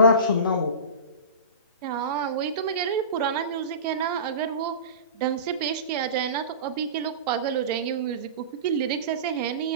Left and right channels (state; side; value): inverted; both; correlation -0.31